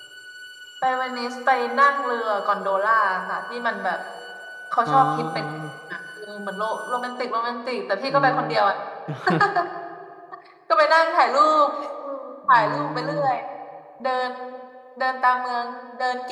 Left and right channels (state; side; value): identical; both; correlation 1.00